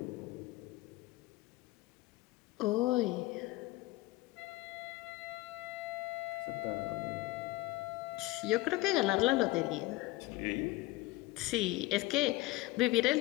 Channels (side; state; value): right; quieter; 18.8 dB